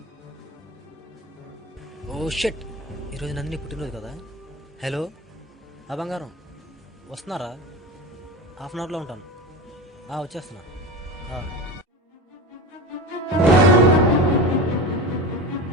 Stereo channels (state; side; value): normal; both; correlation 0.27